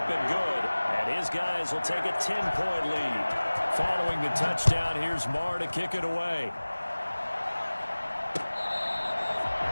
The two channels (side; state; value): both; inverted; correlation -1.00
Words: and good. And his guys will take a 10-point lead. Following the touchdown, here's Marr to kick it away.